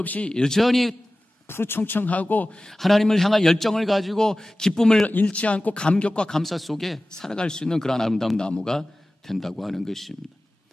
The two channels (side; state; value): both; normal; correlation 0.97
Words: 여전히 푸르청청하고 하나님을 향한 열정을 가지고 기쁨을 잃지 않고 감격과 감사 속에 살아갈 수 있는 그런 아름다운 나무가 된다고 하는 것입니다.